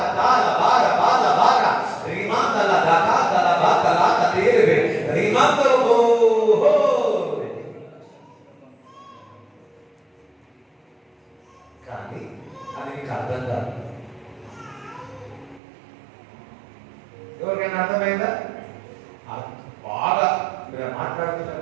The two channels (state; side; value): drops out; left; at 15.6 s